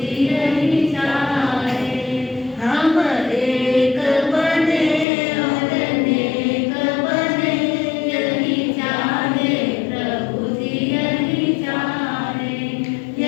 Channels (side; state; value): right; drops out; at 5.1 s